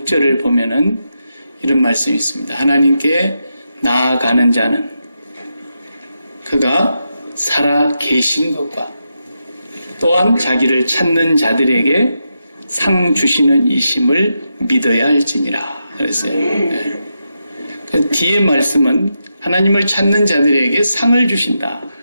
보면은 이런 말씀이 있습니다. 하나님께 나아가는 자는 그가 살아 계신 것과 또한 자기를 찾는 자들에게 상 주시는 이심을 믿어야 할지니라 그랬어요. 네. 그 뒤에 말씀은 하나님을 찾는 자들에게 상을 주신다.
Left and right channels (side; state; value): both; inverted; correlation -0.86